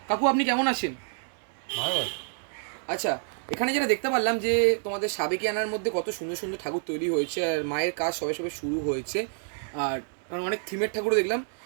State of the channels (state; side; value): silent; left; digital silence